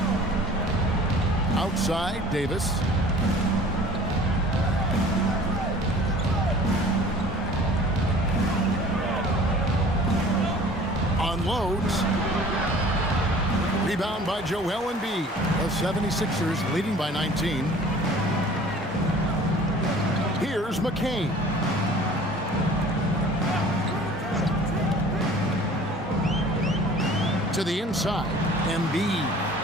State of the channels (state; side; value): normal; both; correlation 0.47